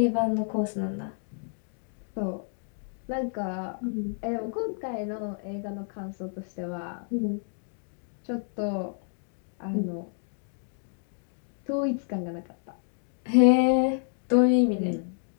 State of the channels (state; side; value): silent; right; 58 dB below the other